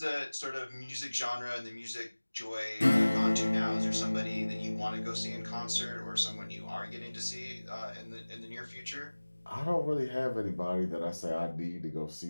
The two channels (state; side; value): inverted; both; correlation -1.00